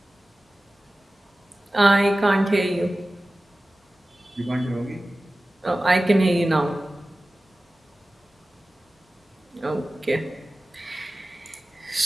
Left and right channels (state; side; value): normal; both; correlation 0.96